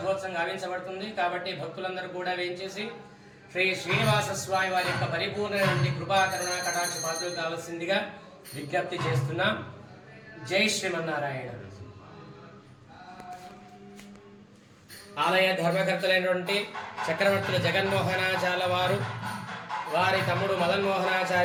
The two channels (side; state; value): both; identical; correlation 1.00